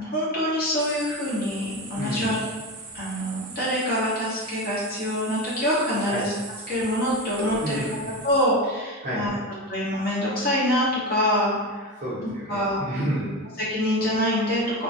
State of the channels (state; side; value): normal; both; correlation 0.22